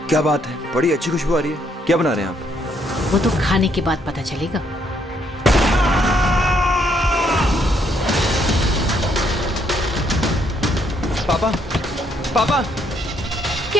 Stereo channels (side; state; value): both; normal; correlation 0.71